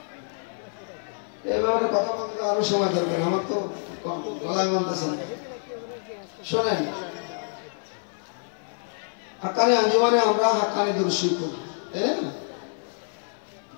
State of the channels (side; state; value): right; silent; 56 dB below the other